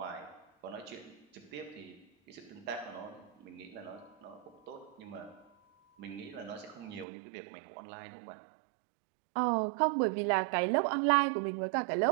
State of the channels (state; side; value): drops out; left; at 7.1 s